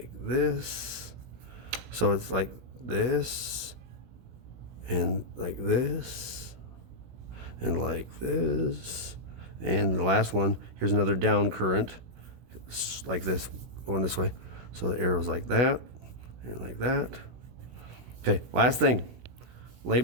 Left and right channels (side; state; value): left; late; 16 ms